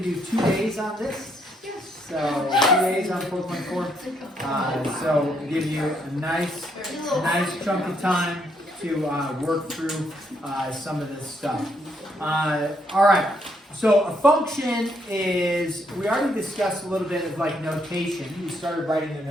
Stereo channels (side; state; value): both; normal; correlation 0.73